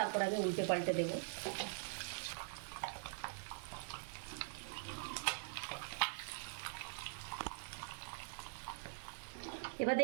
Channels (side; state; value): left; silent; digital silence